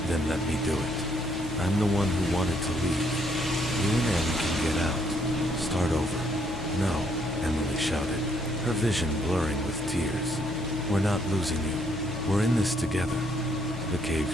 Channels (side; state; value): left; noise; hum, 16 dB below the sound